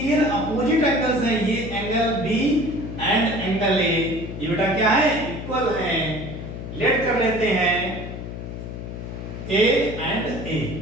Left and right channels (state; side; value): noise; left; hum, 8 dB below the sound